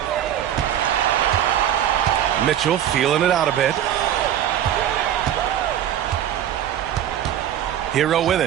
Mitchell feeling it out a bit. Hero with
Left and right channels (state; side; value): quieter; left; 10.8 dB